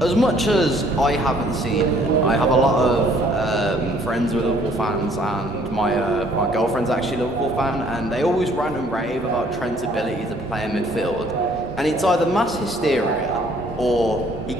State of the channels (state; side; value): normal; both; correlation 0.61